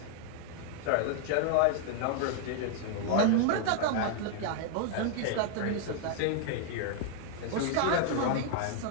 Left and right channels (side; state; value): both; different; correlation 0.00